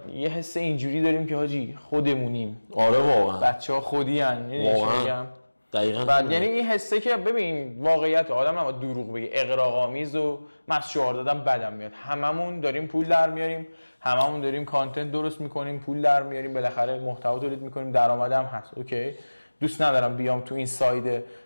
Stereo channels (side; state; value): both; inverted; correlation -1.00